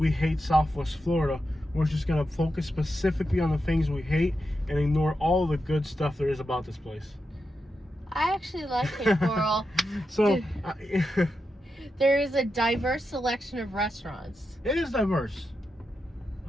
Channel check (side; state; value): both; normal; correlation 0.88